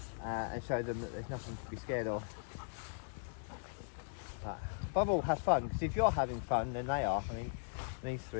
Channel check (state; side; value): silent; right; digital silence